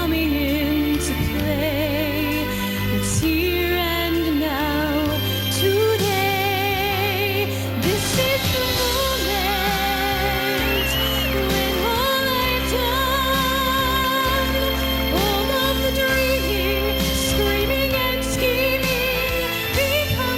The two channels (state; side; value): identical; both; correlation 1.00